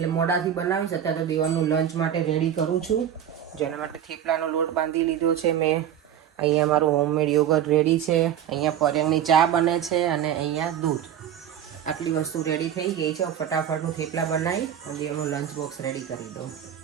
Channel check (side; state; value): left; quieter; 9.9 dB